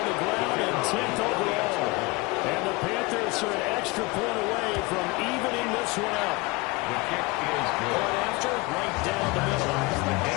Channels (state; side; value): quieter; right; 24.4 dB